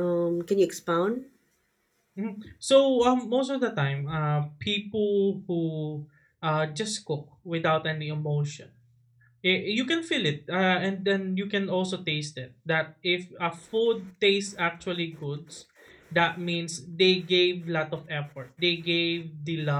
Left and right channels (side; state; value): both; identical; correlation 1.00